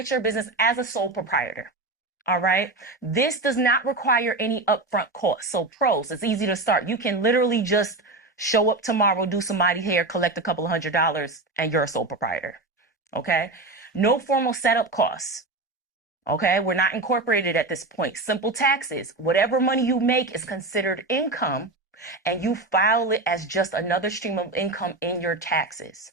your business as a sole proprietor. All right. This does not require any upfront costs. So pros, it's easy to start. You can literally just show up tomorrow, do somebody's hair, collect a couple of $100, and you're a sole proprietor. Okay. No formal setup costs. Okay. We're not incorporated at this point. Simple taxes. Whatever money you make is considered income, and you file it as just another stream of income in your taxes.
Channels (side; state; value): left; quieter; 3.1 dB